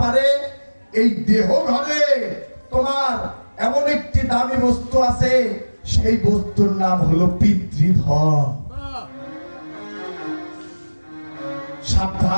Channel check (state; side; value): inverted; both; correlation -1.00